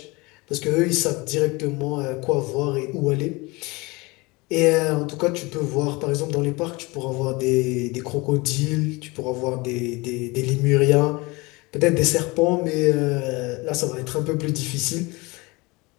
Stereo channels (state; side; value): quieter; right; 24.5 dB